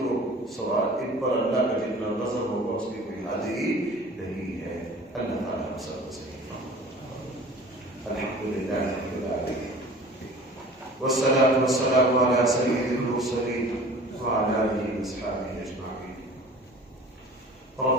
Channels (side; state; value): both; normal; correlation 0.44